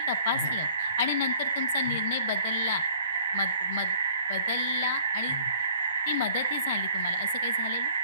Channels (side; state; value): both; inverted; correlation -0.54